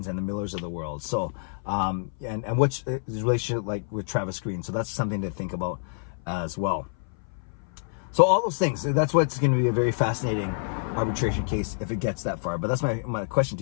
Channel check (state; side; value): silent; right; 57 dB below the other